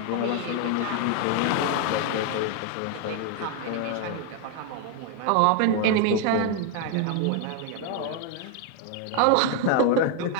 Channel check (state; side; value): different; both; correlation 0.01